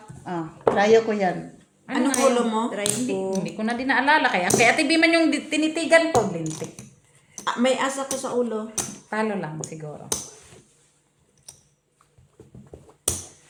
Trayo ko yan. Anong nga ulo yun? mo? Try Hindi, ko. hindi ko na din naalala. Kaya Ate B man yung tinitigan ko. Lintik. May asa ko sa ulo. Talo lang siguro.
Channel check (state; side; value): identical; both; correlation 1.00